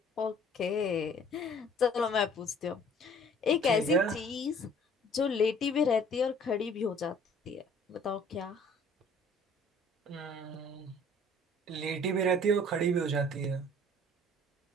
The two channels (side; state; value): both; normal; correlation 0.54